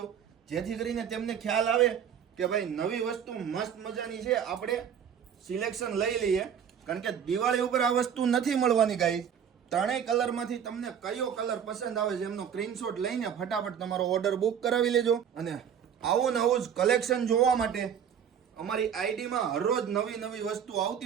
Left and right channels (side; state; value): left; quieter; 8.3 dB